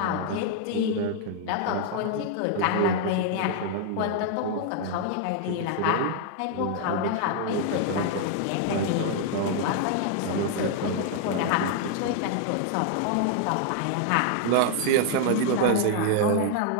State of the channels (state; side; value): different; both; correlation 0.00